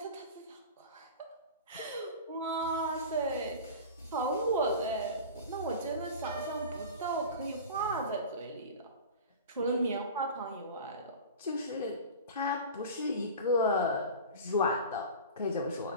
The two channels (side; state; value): both; inverted; correlation -0.34